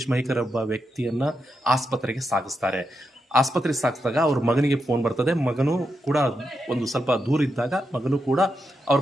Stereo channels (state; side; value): normal; both; correlation 0.85